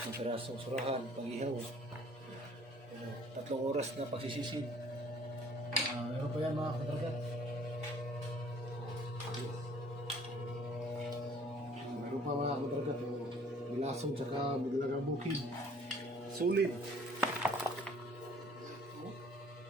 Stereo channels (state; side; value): normal; both; correlation 0.55